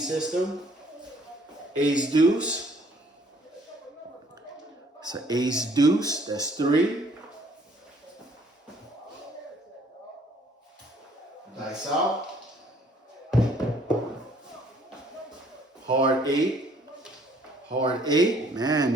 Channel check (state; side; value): normal; both; correlation 0.61